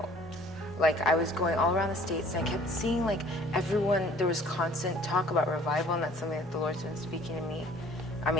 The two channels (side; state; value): both; normal; correlation 0.54